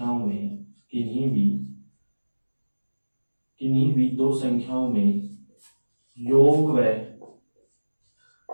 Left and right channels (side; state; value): both; inverted; correlation -1.00